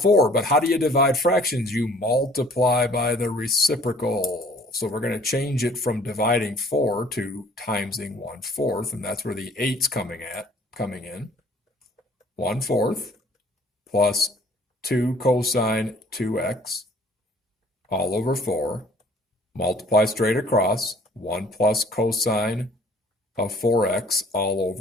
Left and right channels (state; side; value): normal; both; correlation 0.54